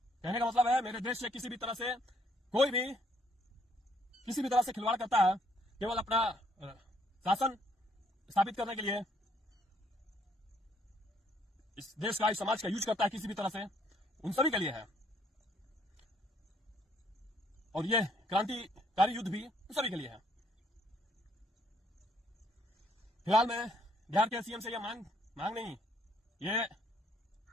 कहने का मतलब है मेरे देश से किसी भी तरह से कोई भी किसी भी तरह से खिलवाड़ करता है, केवल अपना शासन स्थापित करने के लिए इस देश का, इस समाज का यूज करता है किसी भी तरह से, उन सभी के लिए है। और यह क्रांतिकारी युद्ध भी उन सभी के लिए है। फिलहाल मैं बिहार के सीएम से यह मांग नहीं, ये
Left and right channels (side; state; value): both; normal; correlation 0.68